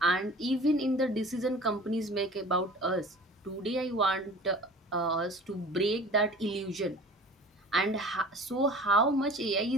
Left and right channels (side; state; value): both; normal; correlation 0.43